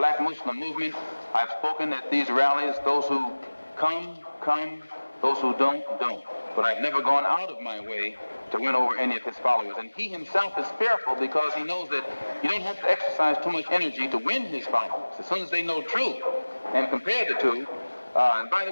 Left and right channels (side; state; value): both; inverted; correlation -1.00